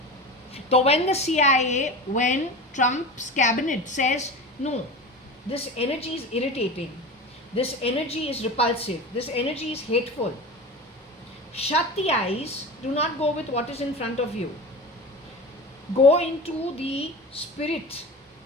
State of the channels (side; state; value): both; normal; correlation 0.30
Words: So when the CIA, when Trump's cabinet says, no, this energy is irritating, this energy is repulsive, this energy is hateful, shut the eyes, do not go with what is in front of you. Go into the spirit